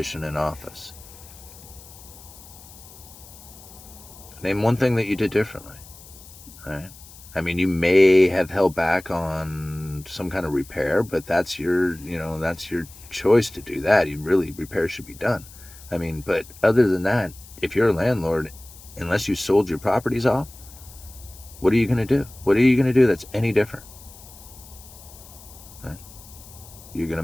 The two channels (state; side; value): noise; left; hiss, 20 dB below the sound